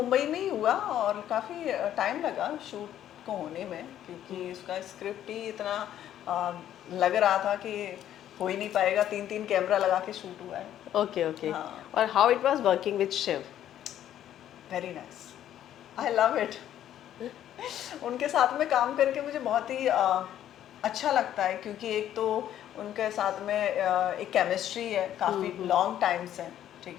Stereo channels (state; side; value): quieter; right; 11.3 dB